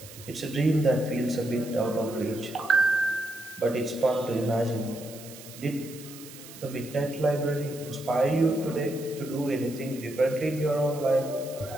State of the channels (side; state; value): right; noise; hiss, 17 dB below the sound